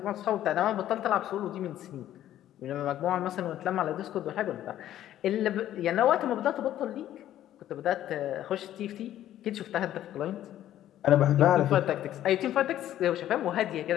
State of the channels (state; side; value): quieter; right; 12.3 dB